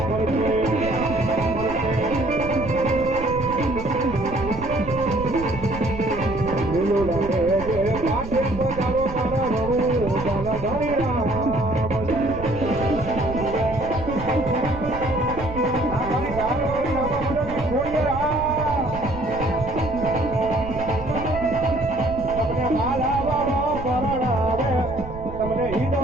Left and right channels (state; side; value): noise; right; rumble, 11 dB below the sound